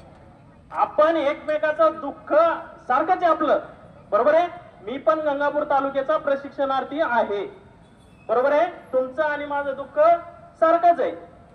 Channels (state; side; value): identical; both; correlation 1.00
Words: आपण एकमेकाचं दुःख सारखंच आहे आपलं. बरोबर आहे. मी पण गंगापूर तालुक्याचा प्रशिक्षणार्थी आहे. बरोबर आहे. तुमचं आणि माझं दुःख सारखंच आहे.